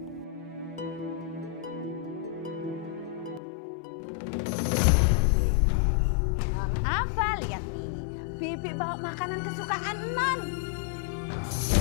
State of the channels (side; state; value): right; drops out; at 3.4 s